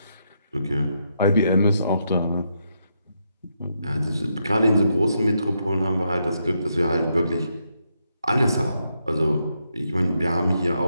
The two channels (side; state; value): both; inverted; correlation -0.80